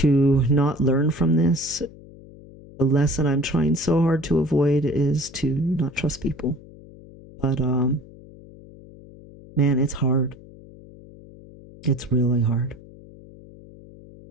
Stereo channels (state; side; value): noise; left; hum, 20 dB below the sound